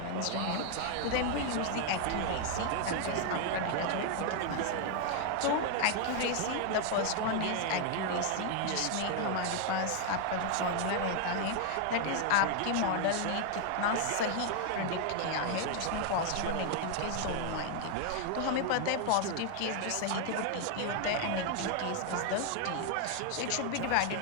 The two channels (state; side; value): different; both; correlation 0.00